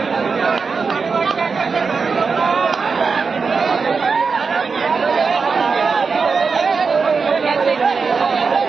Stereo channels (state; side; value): quieter; left; 5.0 dB